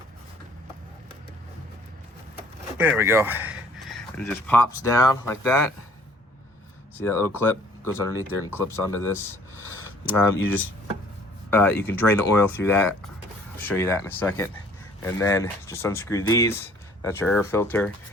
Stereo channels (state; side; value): normal; both; correlation 0.56